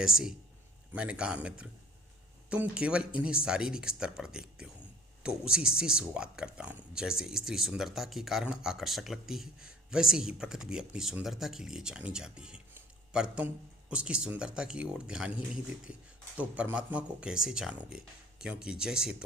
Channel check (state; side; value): normal; both; correlation 0.46